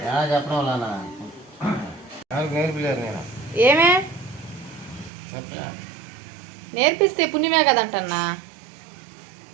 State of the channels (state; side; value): drops out; left; at 5.1 s